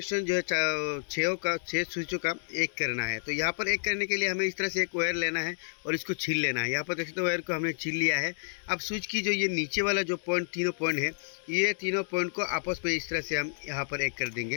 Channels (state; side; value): silent; right; digital silence